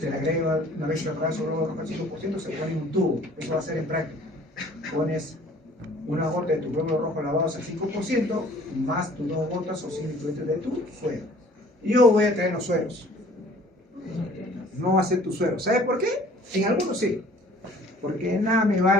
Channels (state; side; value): normal; both; correlation 0.52